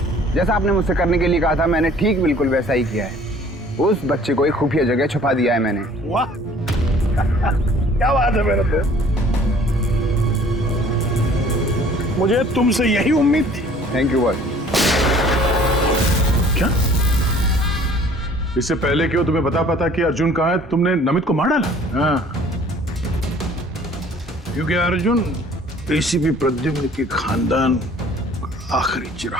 जैसा आपने मुझसे करने के लिए कहा था, मैंने ठीक बिल्कुल वैसा ही किया है। उस बच्चे को एक खुफिया जगह छुपा दिया है मैंने। वाह, क्या बात है मेरे तो। मुझे तुमसे यही उम्मीद थी। Thank you boss. क्या? इससे पहले कि वो तुम्हें बता कि अर्जुन कहाँ है, तुमने नमित को मार डाला? हाँ, क्योंकि अर्जुन एसीपी प्रद्युम्न के खानदान आखिरी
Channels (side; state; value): both; normal; correlation 0.53